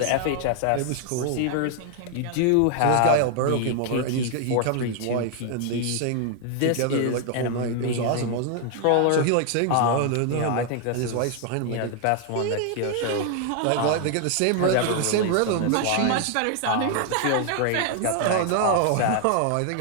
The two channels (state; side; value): different; both; correlation 0.00